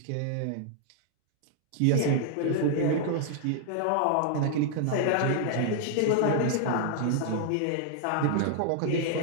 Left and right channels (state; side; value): different; both; correlation 0.00